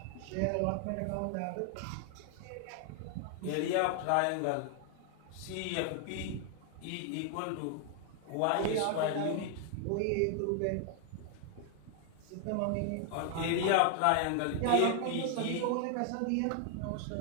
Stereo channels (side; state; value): both; different; correlation 0.00